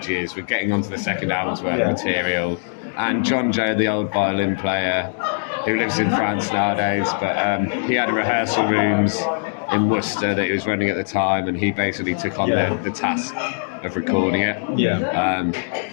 We're getting onto the second album's worth of material. And John Joe, the old violin player, who lives in France nowadays, but he had rehearsal rooms in Worcester that he was running at the time, and he basically took on the task of recording it.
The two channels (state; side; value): silent; right; digital silence